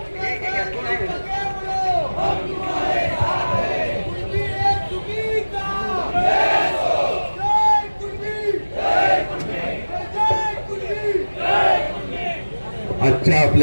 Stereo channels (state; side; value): inverted; both; correlation -1.00